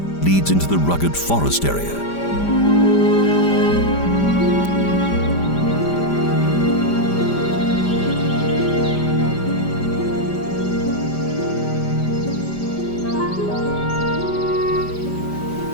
leads into the rugged forest area.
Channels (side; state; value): right; late; 5.0 ms